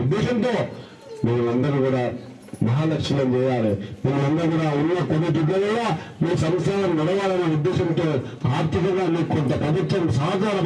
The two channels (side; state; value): both; identical; correlation 1.00